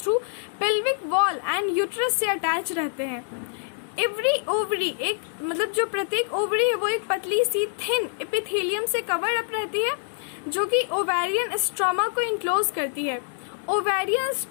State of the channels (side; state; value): right; silent; 61 dB below the other